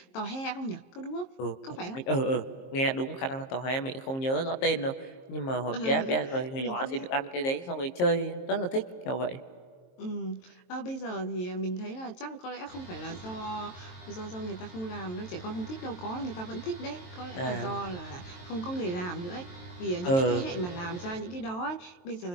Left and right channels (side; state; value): right; late; 23 ms